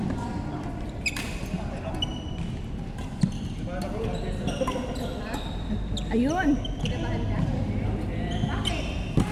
Ayun. Kinabahan ka? Bakit?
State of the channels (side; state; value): both; identical; correlation 1.00